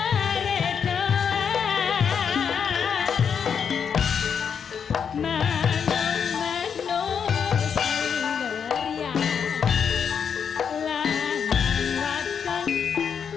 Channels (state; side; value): quieter; right; 7.1 dB